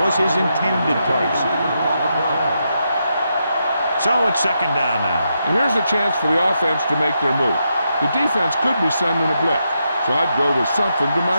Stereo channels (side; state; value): both; inverted; correlation -0.83